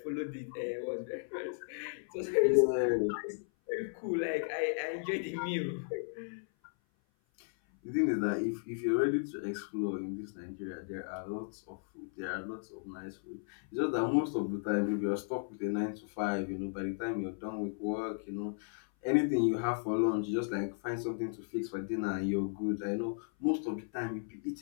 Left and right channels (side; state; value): right; silent; 54 dB below the other